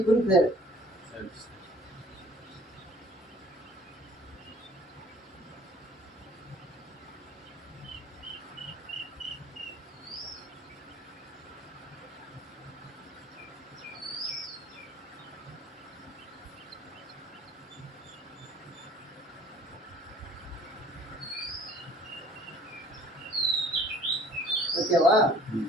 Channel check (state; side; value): normal; both; correlation 0.52